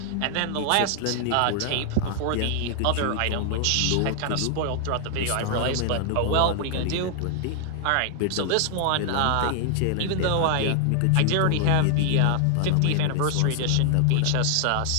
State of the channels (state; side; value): different; both; correlation 0.00